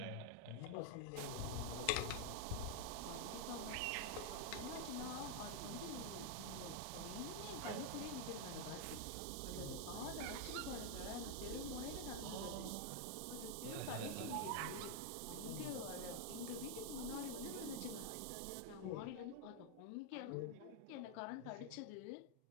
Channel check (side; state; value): both; different; correlation 0.00